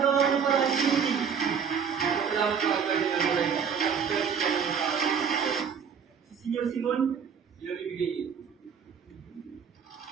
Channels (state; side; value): quieter; left; 6.9 dB